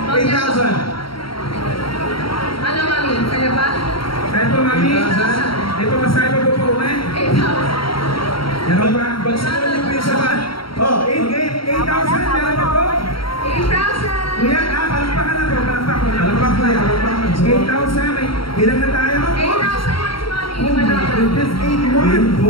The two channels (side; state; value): right; late; 0.74 ms